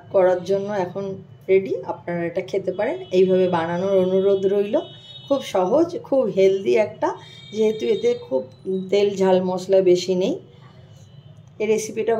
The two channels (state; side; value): identical; both; correlation 1.00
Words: করার জন্য এখন রেডি। আপনারা এটা খেতে পারেন। এইভাবে বানানোর অনুরোধ রইল। খুব সহজ, খুব হেলদি একটা, যেহেতু এতে খুব তেল ঝাল মশলা বেশি নেই। এই রেসিপিটা